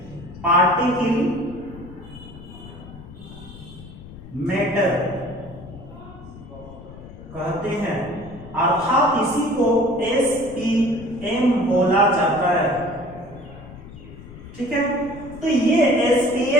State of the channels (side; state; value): left; noise; rumble, 16 dB below the sound